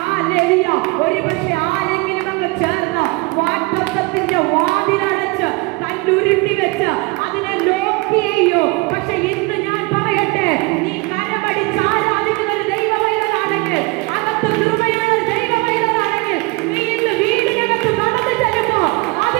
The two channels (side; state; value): left; quieter; 26.1 dB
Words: ഹല്ലേലൂയ. ഒരുപക്ഷെ ആരെങ്കിലും അങ്ങ് ചേർന്ന് വാഗ്ദത്തത്തിന്റെ വാതിലടച്ച് കല്ലുരുട്ടി വെച്ച് അതിനെ ലോക്ക് ചെയ്യോ. പക്ഷെ ഇന്ന് ഞാൻ പറയട്ടെ, നീ കരമടിച്ച് ആരാധിക്കുന്ന ഒരു ദൈവമൈതലാണെങ്കിൽ, അകത്ത് കൃപയുള്ള ദൈവമൈതലാണെങ്കിൽ, നീ ഇന്ന് വീടിനകത്ത് നടന്നു ചെല്ലുമ്പോ